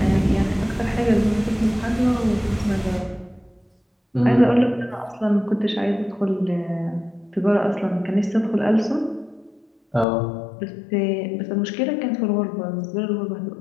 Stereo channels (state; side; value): drops out; right; at 10.1 s